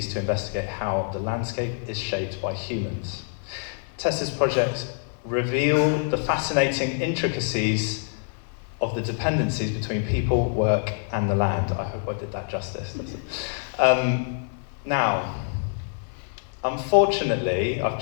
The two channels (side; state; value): right; silent; digital silence